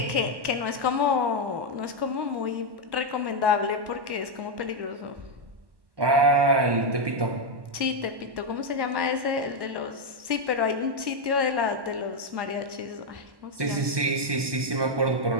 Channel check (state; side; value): late; left; 1.1 ms